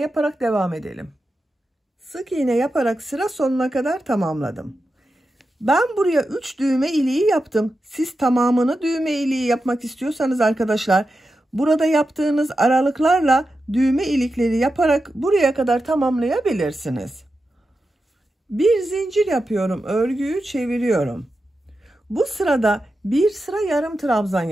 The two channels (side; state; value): both; normal; correlation 0.90